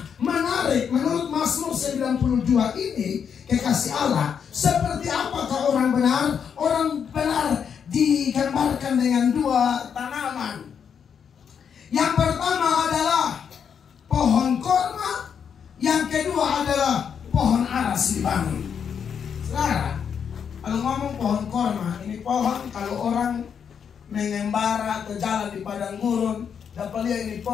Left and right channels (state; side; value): quieter; right; 7.4 dB